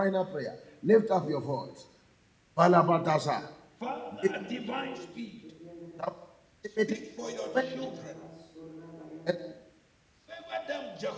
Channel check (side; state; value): both; identical; correlation 1.00